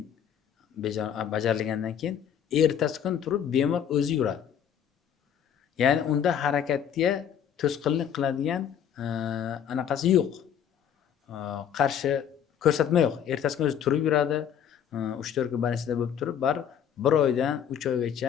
ertasi kun turib bemor o'zi yuradi. Ya'ni unda harakatga to'sqinlik qiladigan anaqasi yo'q. Qarshi ko'rsatma yo'q. Ertasi kun o'zi turib yuradi. 3-4 kun больницада bo'lib turib, bir oydan 3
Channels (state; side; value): quieter; right; 8.8 dB